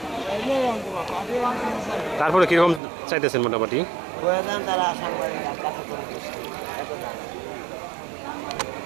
তারপরে কীরকম চাইতেছেন মোটামুটি?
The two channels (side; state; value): left; drops out; at 2.8 s